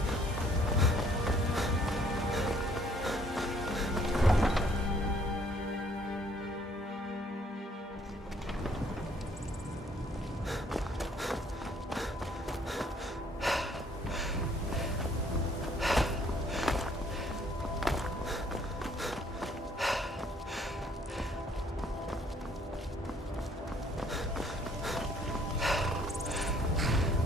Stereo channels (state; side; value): normal; both; correlation 0.62